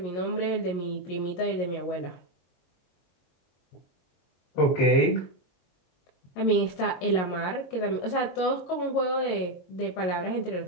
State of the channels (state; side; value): late; right; 22 ms